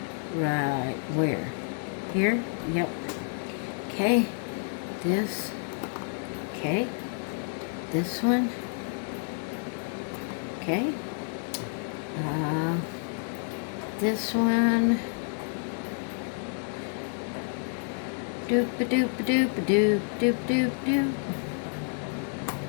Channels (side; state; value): right; silent; 58 dB below the other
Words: Right where? Here? Yep. Okay. This. Okay. This one. Okay. This one. Doop a doop a doop a doop doop doop doop.